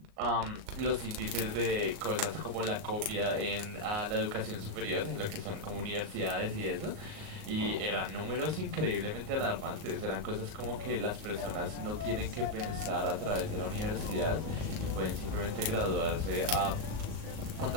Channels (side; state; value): left; late; 37 ms